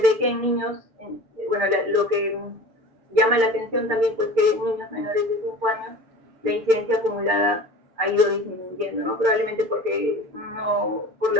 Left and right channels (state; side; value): late; left; 6.7 ms